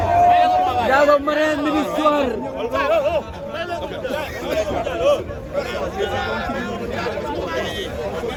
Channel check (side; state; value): both; identical; correlation 1.00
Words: Ndiago Marème mi ngi soir.